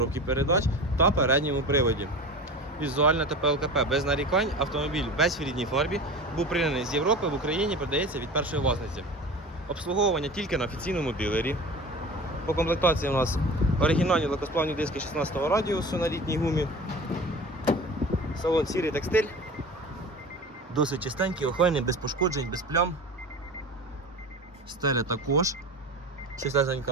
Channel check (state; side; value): normal; both; correlation 0.34